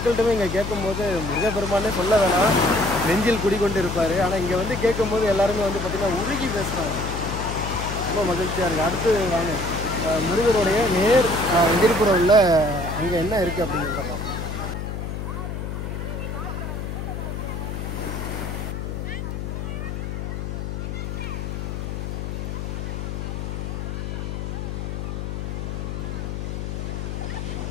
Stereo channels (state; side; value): noise; left; hum, 4 dB below the sound